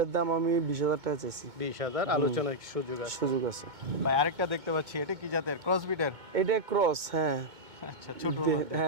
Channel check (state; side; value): late; left; 2.2 ms